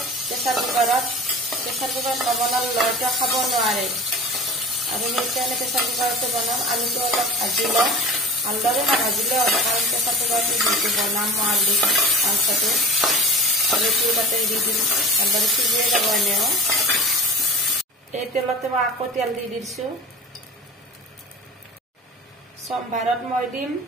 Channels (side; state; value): both; normal; correlation 0.35